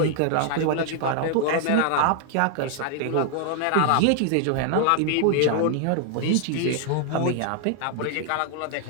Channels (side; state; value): both; different; correlation 0.00